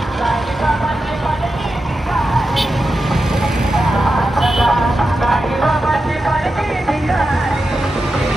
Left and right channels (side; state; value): both; normal; correlation 0.90